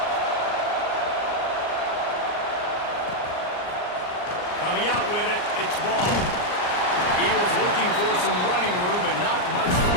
Coming out with it, it's Ball. He was looking for some running room, but not much to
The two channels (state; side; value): late; right; 39 ms